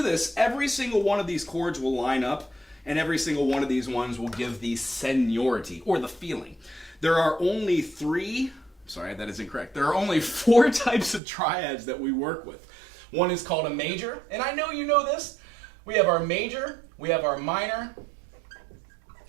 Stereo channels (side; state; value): left; drops out; at 11.2 s